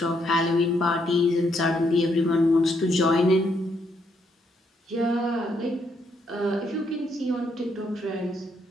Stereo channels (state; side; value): normal; both; correlation 0.75